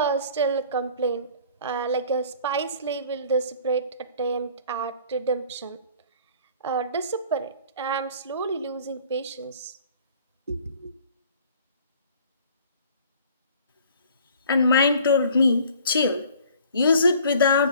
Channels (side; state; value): both; inverted; correlation -0.51